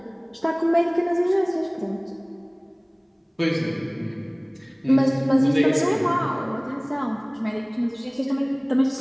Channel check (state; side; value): identical; both; correlation 1.00